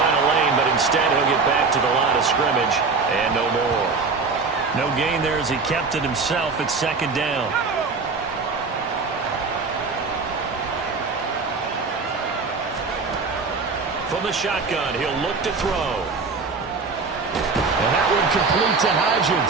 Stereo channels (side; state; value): left; quieter; 4.4 dB